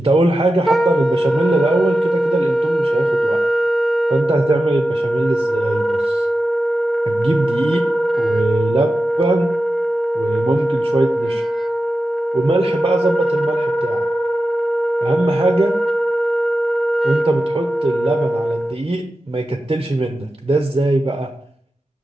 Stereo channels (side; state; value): both; normal; correlation 0.92